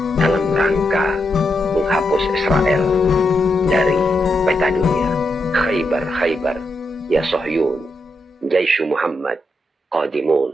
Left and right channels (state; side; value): normal; both; correlation 0.83